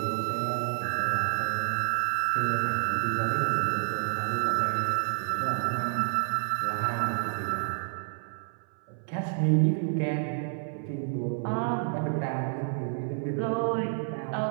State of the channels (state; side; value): silent; left; 58 dB below the other